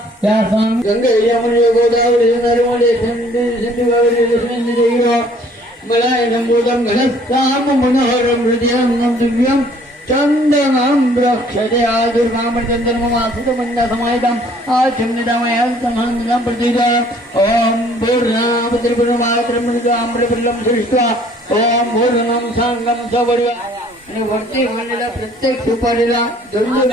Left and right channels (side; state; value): both; normal; correlation 0.58